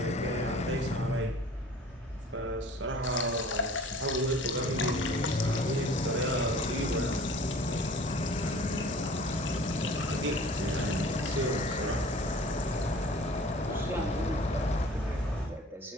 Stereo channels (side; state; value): both; normal; correlation 0.47